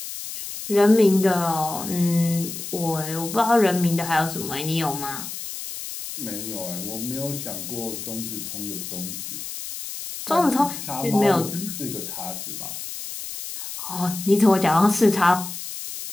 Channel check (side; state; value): left; noise; hiss, 8 dB below the sound